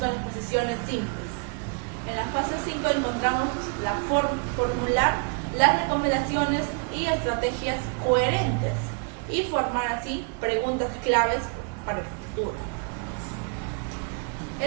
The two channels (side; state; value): left; quieter; 35.9 dB